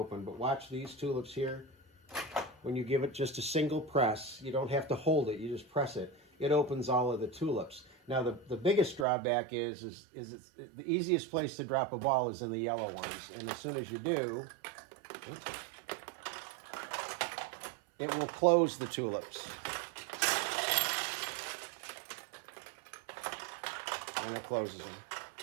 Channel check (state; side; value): drops out; left; at 9.1 s